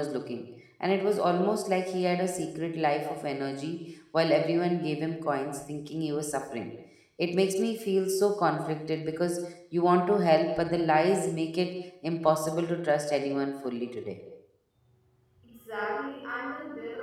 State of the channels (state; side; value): identical; both; correlation 1.00